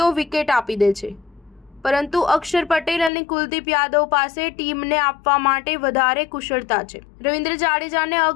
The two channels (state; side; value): drops out; right; at 3.1 s